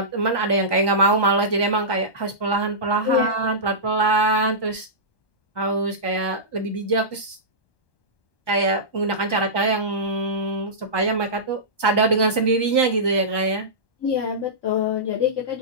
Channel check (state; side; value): late; right; 1.2 ms